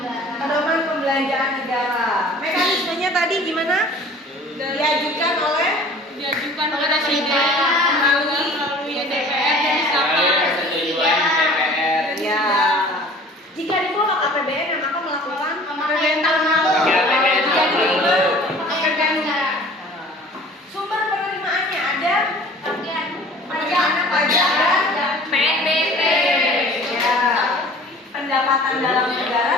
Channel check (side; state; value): both; normal; correlation 0.47